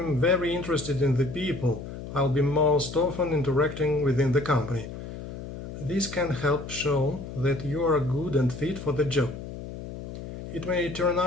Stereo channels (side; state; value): left; noise; hum, 10 dB below the sound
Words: very interested in the people I'll be most often interacting within the company. This can help show that you are good and fit for the job. It may turn